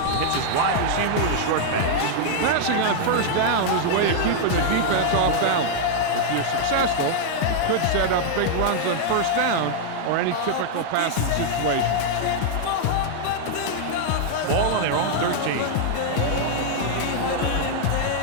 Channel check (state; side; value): different; both; correlation -0.01